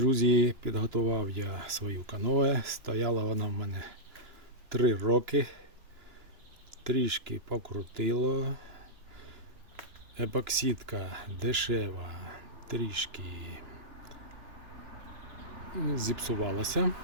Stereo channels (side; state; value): left; late; 2.9 ms